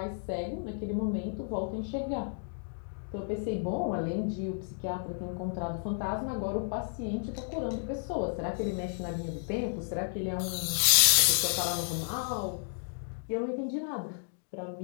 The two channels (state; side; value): silent; right; digital silence